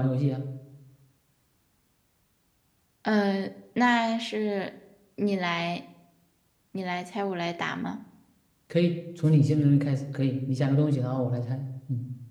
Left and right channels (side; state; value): both; identical; correlation 1.00